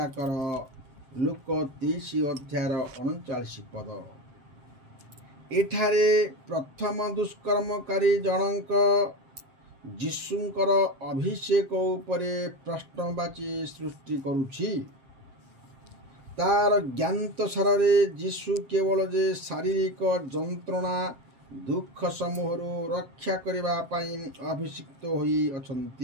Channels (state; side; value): late; left; 7.6 ms